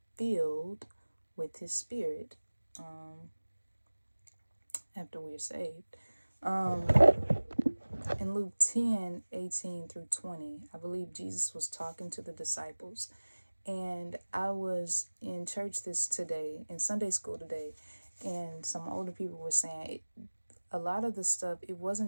filled with his spirit after we're saved. In Luke 10:18-20, I believe Jesus was talking to the disciples. And I was in church in Sunday school today, and some older people were saying a lot of the stuff, it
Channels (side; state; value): both; inverted; correlation -1.00